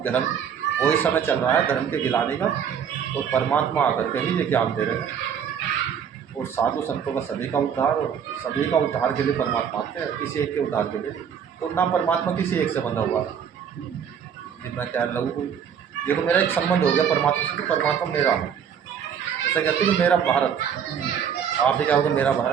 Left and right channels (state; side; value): quieter; left; 7.9 dB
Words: धर्म, वही समय चल रहा है धर्म के गिलाने का। तो परमात्मा आकर के ही ये ज्ञान दे रहे हैं, और साधु संतों का सभी का उद्धार, और सभी का उद्धार के लिए परमात्मा आते हैं, किसी एक के उद्धार के लिए। तो ना परमात्मा किसी एक से बंधा हुआ है कि मैं कह लूँ कोई, देखो मेरा एक संबंध हो गया परमात्मा से, तो परमात्मा मेरा है। ऐसा कहते हैं कि मेरा भारत, आप भी कहोगे मेरा